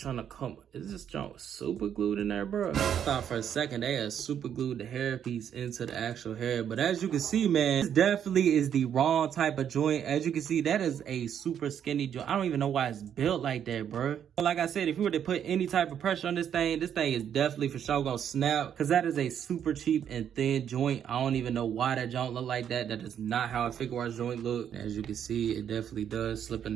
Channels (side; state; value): left; quieter; 9.0 dB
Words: to come. Is this junk super glued in there, bro? I thought for a second they had super glued the hair piece into the actual hair. But as you can see, man, this definitely is the wrong type of joint. As you can see, that is a super skinny joint. I don't even know why it's built like that, bro. But like I said, if you were to put any type of pressure on this thing is definitely for sure gonna snap. Cause that is a super cheap and thin joint. I don't even know why that joint look like that. That is not how a figuarts joint look. As you can see, it definitely does slip in